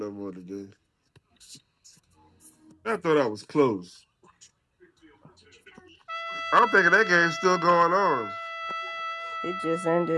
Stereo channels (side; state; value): both; identical; correlation 1.00